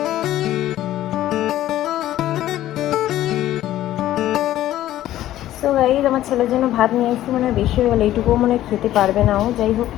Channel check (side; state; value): right; quieter; 13.7 dB